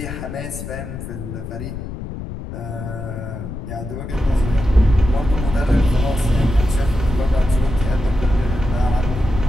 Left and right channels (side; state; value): left; noise; rumble, 8 dB below the sound